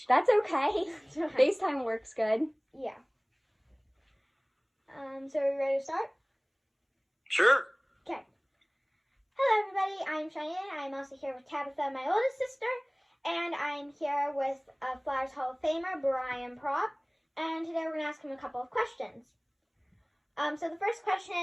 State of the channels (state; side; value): identical; both; correlation 1.00